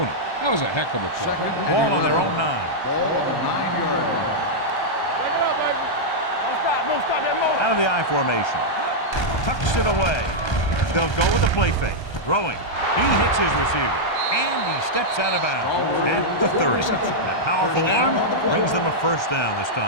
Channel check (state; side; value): late; right; 1.3 ms